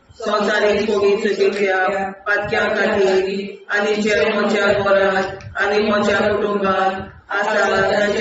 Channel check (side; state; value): both; identical; correlation 1.00